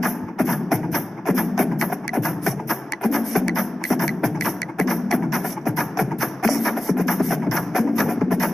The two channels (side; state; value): both; normal; correlation 0.96